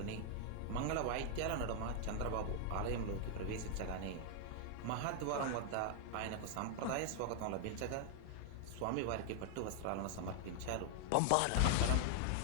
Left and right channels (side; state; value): both; different; correlation 0.00